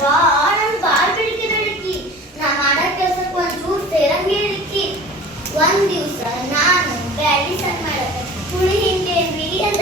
ಬಾಳ್ ಬೆಳಕಿ ನಾ ಮಾಡೋ ಕೆಲ್ಸಕ್ಕೆ ಒಂಚೂರು ಸೇರಂಗೇಳಿಕ್ಕಿ. ಒಂದ್ ದಿವ್ಸ ನಾನು ಬ್ಯಾಡಿ ಸಣ್ಣ ಮಾಡಕ್ಕೆ ಹುಳಿ ಹಿಂಡೇನ್ರಿ ಅಂತ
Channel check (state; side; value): normal; both; correlation 0.40